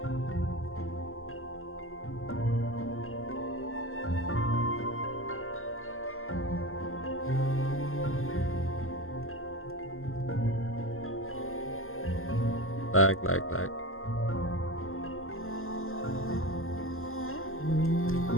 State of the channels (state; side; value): late; right; 0.61 ms